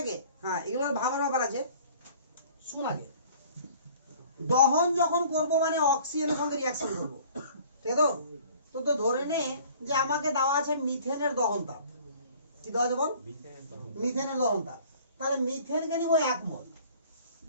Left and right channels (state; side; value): inverted; both; correlation -0.51